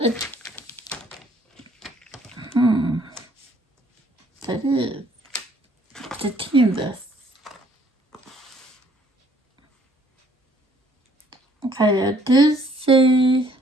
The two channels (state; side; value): normal; both; correlation 0.62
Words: That is the TAMMYS. Okay, I do see